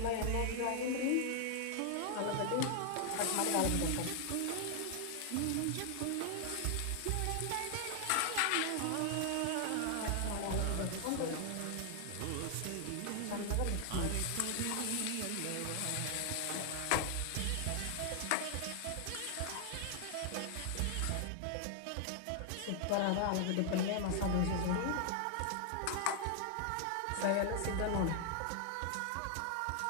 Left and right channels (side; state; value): both; different; correlation 0.00